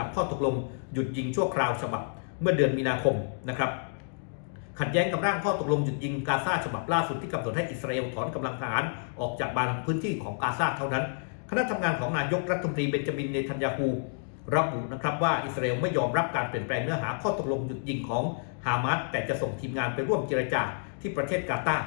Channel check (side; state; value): right; silent; digital silence